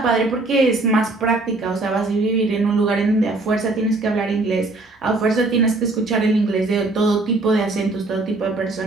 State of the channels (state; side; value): quieter; left; 3.1 dB